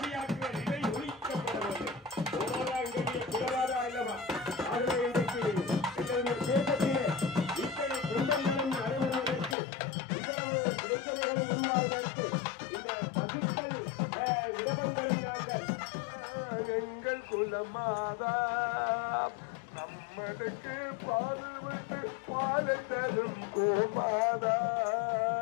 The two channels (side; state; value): right; drops out; at 9.6 s